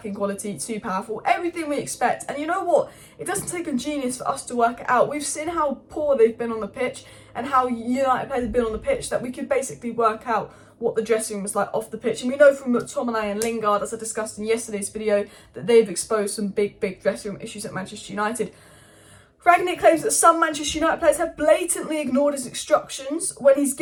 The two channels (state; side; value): identical; both; correlation 1.00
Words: quality, too powerful, everything we expect. And you know what? It doesn't take a genius for us to work it out. We've seen how poor they've been on the pitch and how United players have been on the pitch that we could basically work out what the dressing room was like off the pitch. And we know from McTominay and Lingard, as I discussed in yesterday's video, that they've exposed some big dressing room issues at Manchester United. Rangnick claims that some Manchester United players have blatantly ignored his instructions when he's